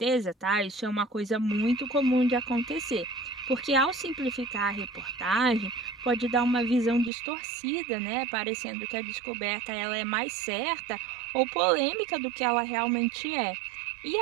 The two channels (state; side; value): drops out; left; at 7.1 s